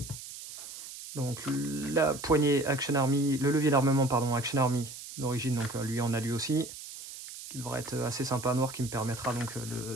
donc la poignée Action Army, le levier d'armement pardon Action Army d'origine, donc lui en a lui aussi, qui devrait être assez sympa noir, qui me permettra donc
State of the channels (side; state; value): right; noise; hiss, 12 dB below the sound